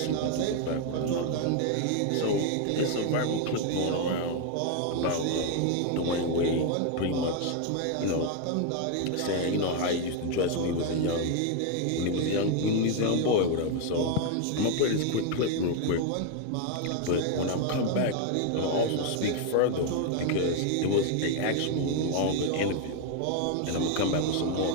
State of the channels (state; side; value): different; both; correlation 0.01